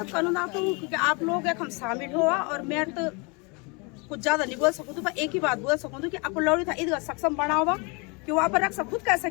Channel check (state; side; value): quieter; right; 30.5 dB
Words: करना तो क्योंकि आप लोग हम शामिल हुआ और मैं तो कुछ ज्यादा नहीं बोल सकूँ पर एक ही बात बोल सकूँ कि आपको लौड़ी था इधर सक्षम बना होगा कि वहाँ पर रख सब खुद कैसे